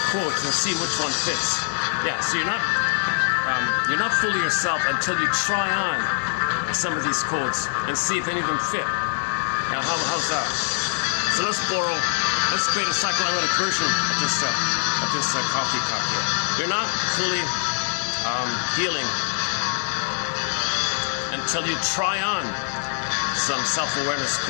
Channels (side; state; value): right; silent; digital silence